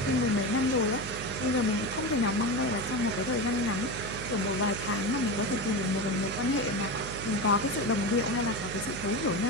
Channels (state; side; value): noise; right; hum, 9 dB below the sound